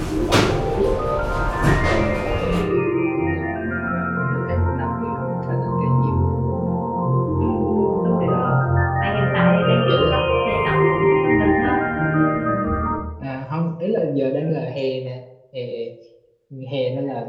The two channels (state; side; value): identical; both; correlation 1.00